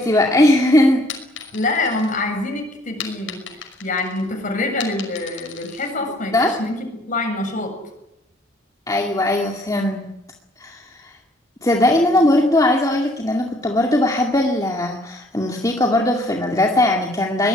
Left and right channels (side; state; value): both; normal; correlation 0.61